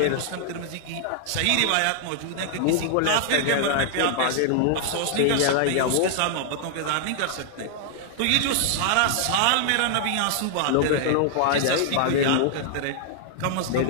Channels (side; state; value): both; different; correlation -0.01